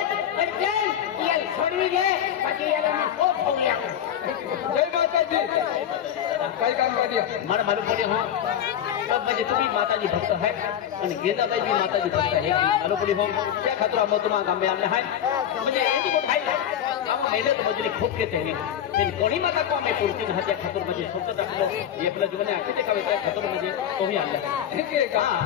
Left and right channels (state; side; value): quieter; right; 9.9 dB